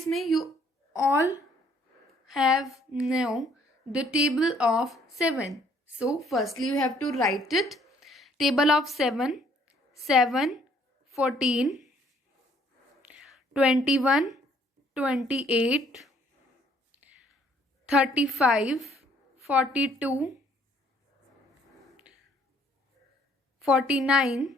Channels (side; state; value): both; normal; correlation 0.63